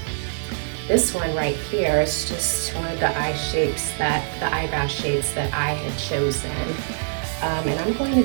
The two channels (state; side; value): silent; left; digital silence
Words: this one right here. It's just one of the eyebrow shapes that I had chosen. And I'm going